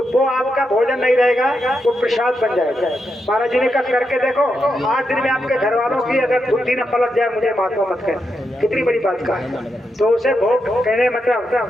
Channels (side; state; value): both; normal; correlation 0.84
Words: वो आपका भोजन नहीं रहेगा, वो प्रसाद बन जाएगा। महाराज जी ने कहा करके देखो, 8 दिन में आपके घर वालों की अगर बुद्धि न पलट जाए, मुझे महात्मा मत कह, कितनी बड़ी बात का है। तो उसे भोग कहने मतलब